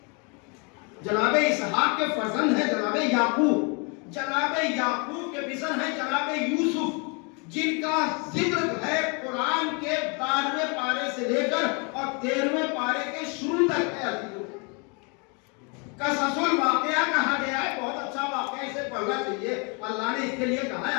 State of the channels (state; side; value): quieter; right; 33.6 dB